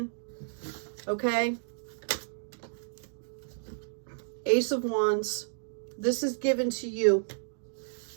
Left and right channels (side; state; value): left; silent; digital silence